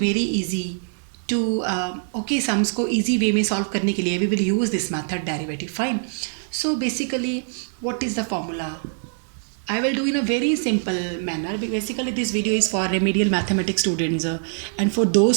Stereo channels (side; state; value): left; silent; digital silence